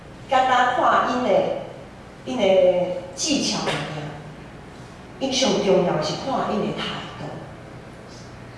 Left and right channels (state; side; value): identical; both; correlation 1.00